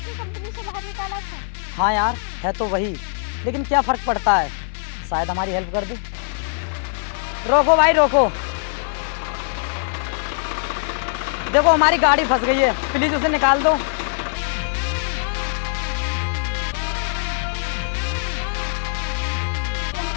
कंपनी से बाहर निकाला था। हाँ यार, है तो वही, लेकिन क्या फर्क पड़ता है, शायद हमारी हेल्प कर दे। रोको भाई रोको, देखो हमारी गाड़ी फंस गई है, प्लीज उसे निकाल दो।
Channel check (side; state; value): right; silent; 56 dB below the other